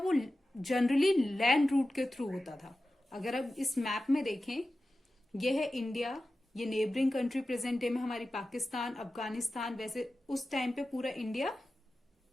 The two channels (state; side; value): normal; both; correlation 0.94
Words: जनरली लैंड रूट के थ्रू होता था। अगर आप इस मैप में देखें, यह है इंडिया, ये नेबरिंग कंट्री प्रेजेंट डे में हमारी पाकिस्तान, अफगानिस्तान, वैसे उस टाइम पे पूरा इंडिया,